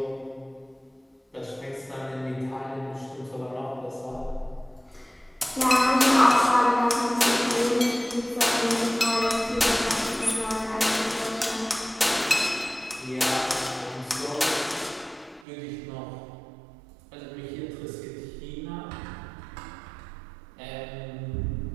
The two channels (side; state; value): left; drops out; at 15.5 s